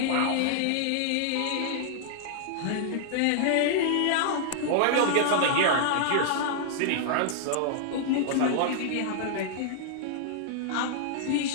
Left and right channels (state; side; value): different; both; correlation -0.01